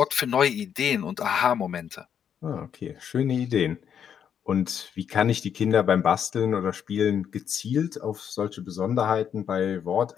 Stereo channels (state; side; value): quieter; right; 8.3 dB